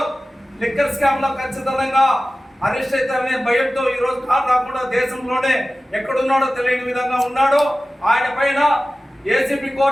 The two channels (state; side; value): normal; both; correlation 0.96